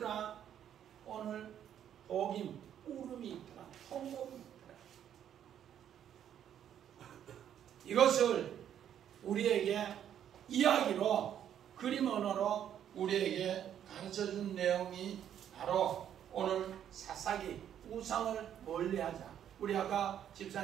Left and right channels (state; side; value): quieter; left; 9.9 dB